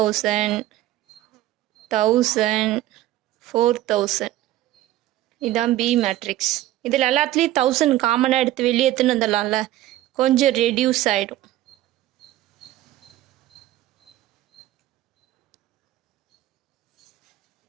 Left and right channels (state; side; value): quieter; left; 14.7 dB